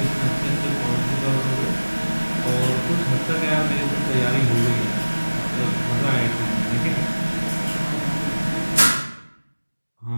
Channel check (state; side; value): inverted; both; correlation -1.00